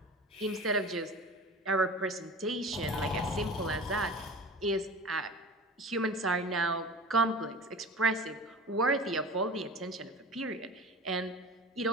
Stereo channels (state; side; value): normal; both; correlation 0.36